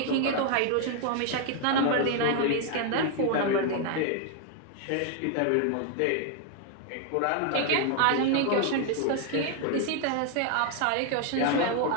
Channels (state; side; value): different; both; correlation 0.00